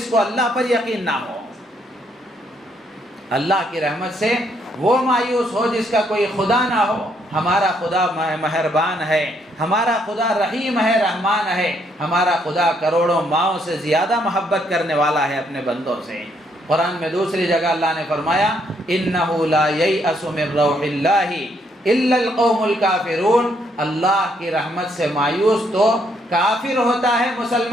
کو اللہ پر یقین نہ ہو، اللہ کی رحمت سے وہ مایوس ہو جس کا کوئی خدا نہ ہو۔ ہمارا خدا مہربان ہے، ہمارا خدا رحیم ہے، رحمان ہے، ہمارا خدا کروڑوں ماؤں سے زیادہ محبت کرنے والا ہے اپنے بندوں سے۔ قرآن میں دوسری جگہ اللہ نے فرمایا اِنَّهُ لَا يَيْأَسُ مِن رَّوْحِ اللَّهِ إِلَّا الْقَوْمُ الْكَافِرُونَ، اللہ کی رحمت سے مایوس تو کافر ہوتا ہے،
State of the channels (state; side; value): normal; both; correlation 0.72